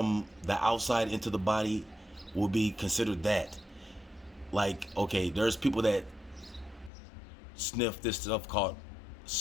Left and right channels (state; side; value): drops out; right; at 6.9 s